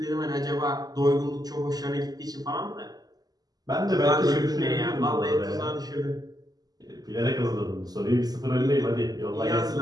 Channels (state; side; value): late; left; 0.19 ms